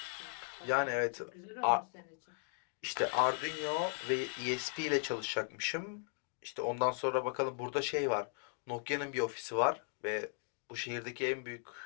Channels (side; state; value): right; silent; 53 dB below the other